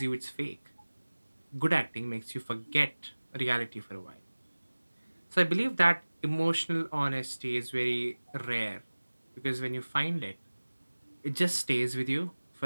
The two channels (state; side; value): inverted; both; correlation -1.00